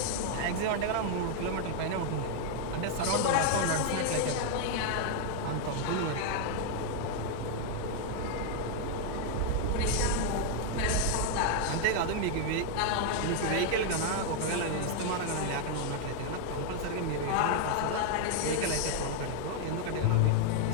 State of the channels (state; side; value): different; both; correlation 0.00